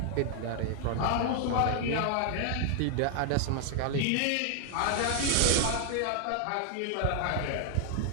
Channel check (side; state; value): both; different; correlation 0.00